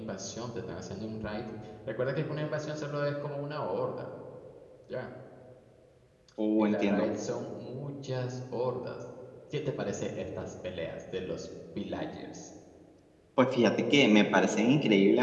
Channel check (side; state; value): both; identical; correlation 1.00